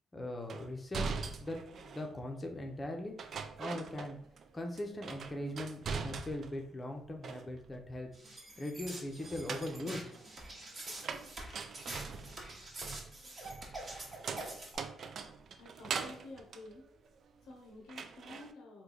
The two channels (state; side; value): normal; both; correlation 0.81